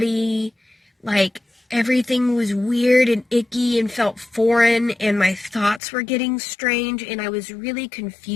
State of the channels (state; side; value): drops out; right; at 5.8 s